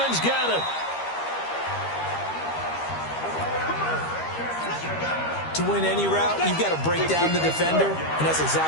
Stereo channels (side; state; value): right; late; 13 ms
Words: got it. To win any route, you've got to break down the defender, and that's